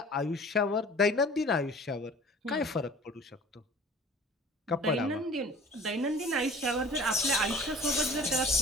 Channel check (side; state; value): both; normal; correlation 0.46